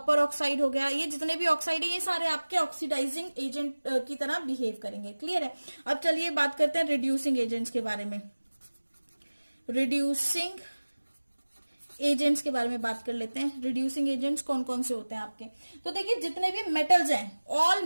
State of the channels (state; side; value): inverted; both; correlation -1.00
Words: ऑक्साइड हो गया, ये जितने भी ऑक्साइड है ये सारे आपके ऑक्सीडाइजिंग एजेंट की तरह बिहेव करेंगे। क्लियर है। अब चलिए बात करते हैं रिड्यूसिंग एजेंट्स के बारे में। रिड्यूसिंग एजेंट्स के बारे में बात कर लेते हैं। रिड्यूसिंग एजेंट्स कौन कौन से होते हैं आपके, तो देखिए जितने भी मेटल्स हैं, all